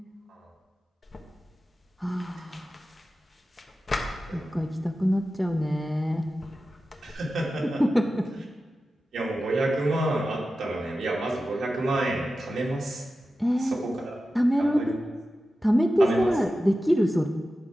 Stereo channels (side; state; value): both; normal; correlation 0.93